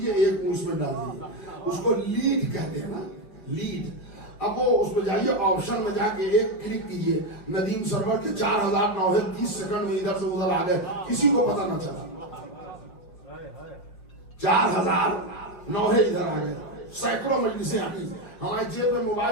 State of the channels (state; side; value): late; right; 5.5 ms